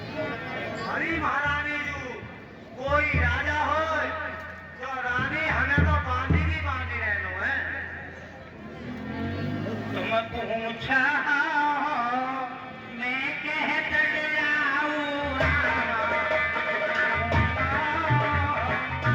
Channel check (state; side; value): identical; both; correlation 1.00